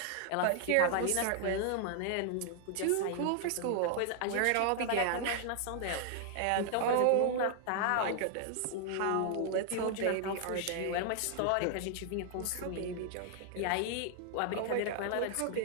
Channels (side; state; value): both; different; correlation 0.00